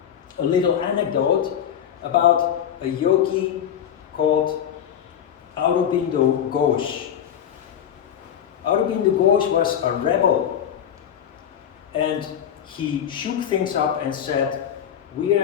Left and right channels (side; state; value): right; quieter; 9.2 dB